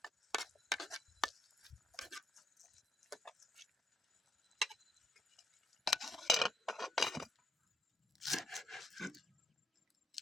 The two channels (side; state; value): both; normal; correlation 0.76